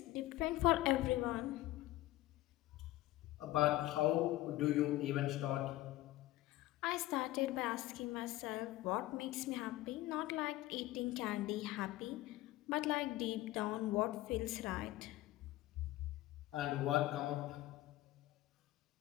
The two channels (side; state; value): right; quieter; 16.7 dB